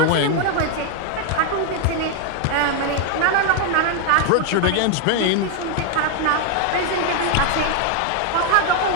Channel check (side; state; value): both; different; correlation 0.00